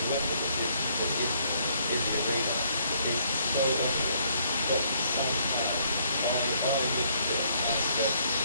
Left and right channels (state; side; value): inverted; both; correlation -0.68